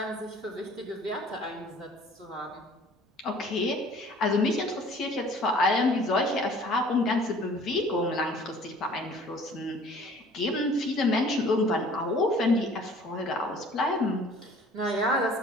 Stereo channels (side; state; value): both; normal; correlation 0.51